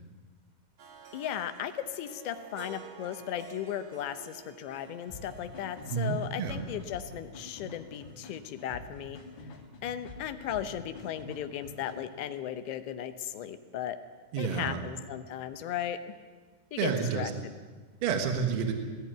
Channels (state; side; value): late; left; 2.1 ms